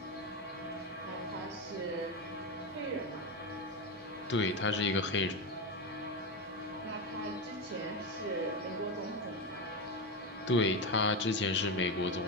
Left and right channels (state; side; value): normal; both; correlation 0.14